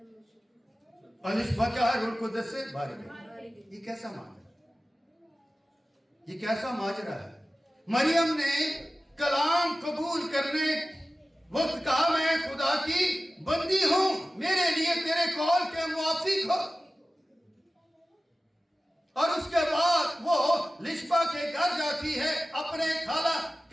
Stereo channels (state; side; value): normal; both; correlation 0.95